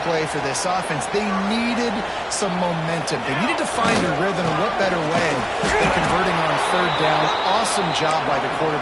play for this offense. They needed some momentum. They needed to find a rhythm, and what better way than converting on 3rd down. Awesome job by the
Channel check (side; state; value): both; identical; correlation 1.00